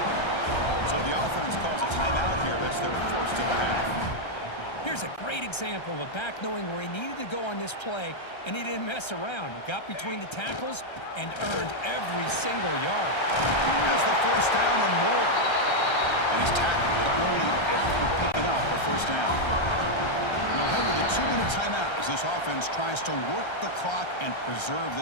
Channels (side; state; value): right; late; 1.3 ms